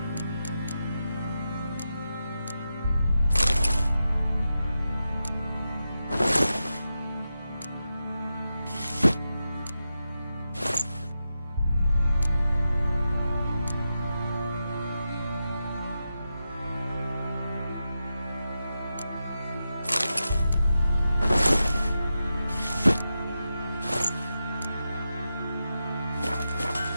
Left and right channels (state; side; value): inverted; both; correlation -0.89